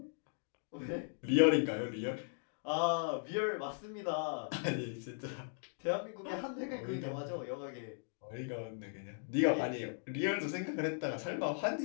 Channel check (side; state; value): right; silent; digital silence